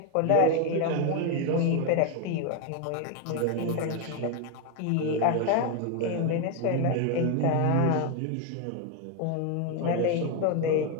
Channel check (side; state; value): both; different; correlation 0.01